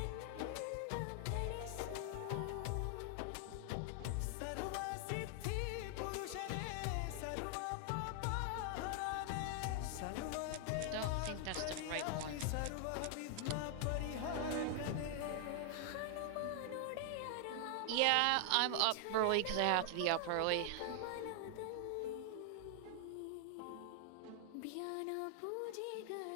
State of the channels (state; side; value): different; both; correlation 0.00